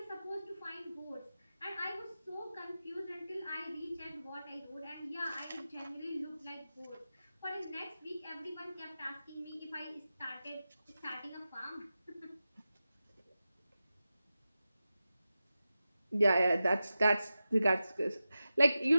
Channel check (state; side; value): inverted; both; correlation -0.93